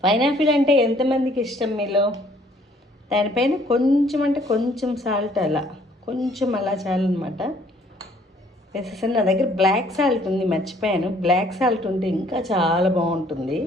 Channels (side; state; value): both; normal; correlation 0.61